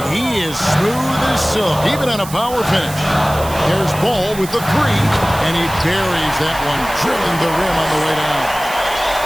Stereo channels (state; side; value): noise; right; hiss, 13 dB below the sound